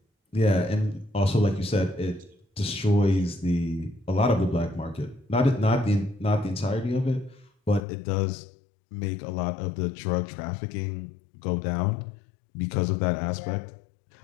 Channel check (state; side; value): drops out; right; at 7.9 s